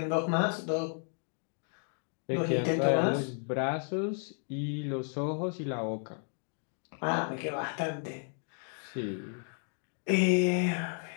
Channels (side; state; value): right; silent; 56 dB below the other